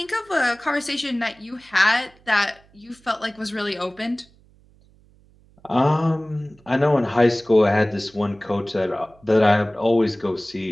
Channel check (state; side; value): noise; right; hum, 30 dB below the sound